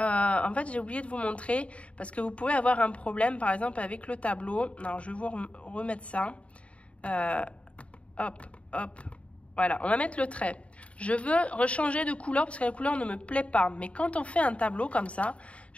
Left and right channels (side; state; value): right; late; 0.063 ms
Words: fait, j'ai oublié de vous montrer parce que vous pouvez avoir un problème, par exemple, avec le tableau. Alors, je vais vous remettre ça. Hop, hop. Voilà, on va mettre le trait. Je veux rechanger de couleur parce que la couleur ne me plaît pas. Mais quand on fait un tableau comme ça,